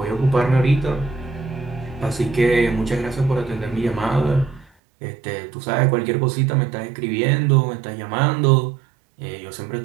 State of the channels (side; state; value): left; drops out; at 4.7 s